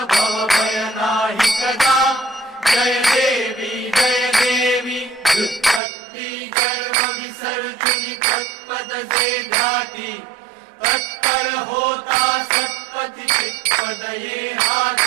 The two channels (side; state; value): left; drops out; at 5.8 s